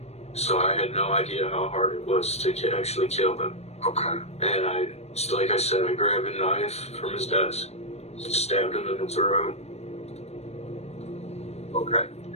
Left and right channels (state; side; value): late; right; 0.31 ms